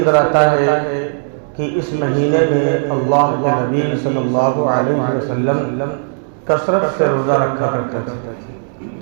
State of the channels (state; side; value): silent; left; digital silence